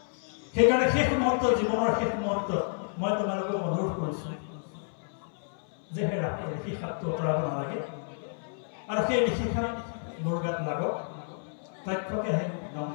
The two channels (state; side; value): silent; right; 58 dB below the other